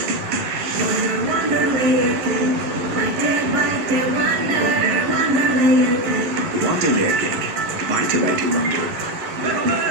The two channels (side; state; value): left; late; 12 ms